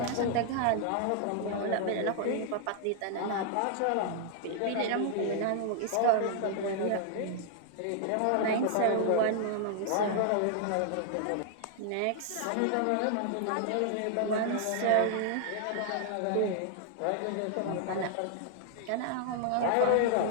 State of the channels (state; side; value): different; both; correlation 0.00